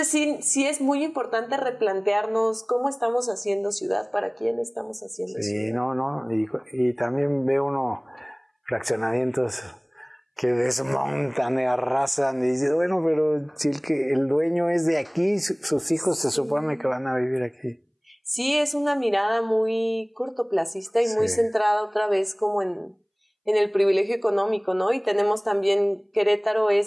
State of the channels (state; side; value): identical; both; correlation 1.00